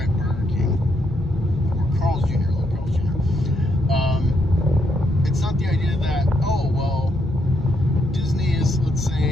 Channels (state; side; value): normal; both; correlation 0.76